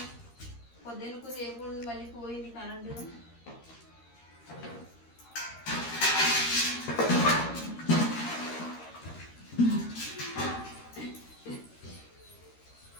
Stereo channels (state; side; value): late; right; 13 ms